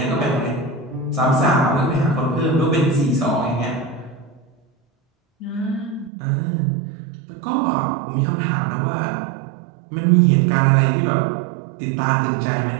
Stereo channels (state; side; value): drops out; left; at 6.1 s